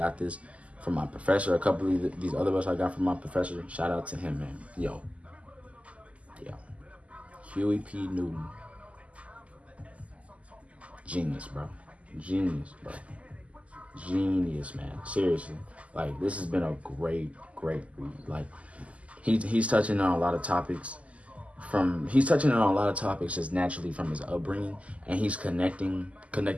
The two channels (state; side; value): late; left; 0.066 ms